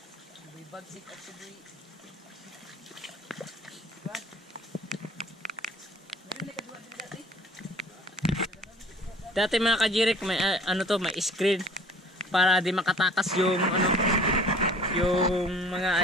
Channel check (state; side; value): normal; both; correlation 0.50